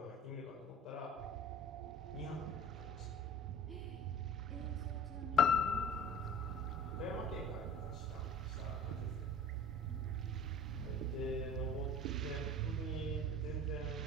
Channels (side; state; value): both; normal; correlation 0.42